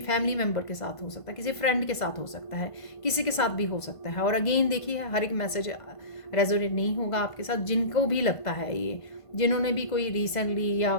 फैमिली मेम्बर के साथ हो सकता है, किसी फ्रेंड के साथ हो सकता है, किसी के साथ भी हो सकता है। और अगेन देखिए, हर एक मैसेज रेजोनेट नहीं होगा आपके साथ। जिनको भी लगता है ये, जिन्होंने भी कोई रिसेंटली या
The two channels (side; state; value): right; late; 1.5 ms